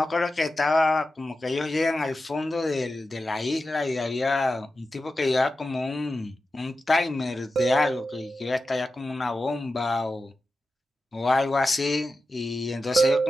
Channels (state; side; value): normal; both; correlation 0.92